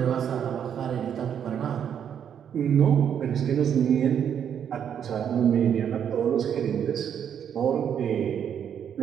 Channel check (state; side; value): quieter; left; 8.6 dB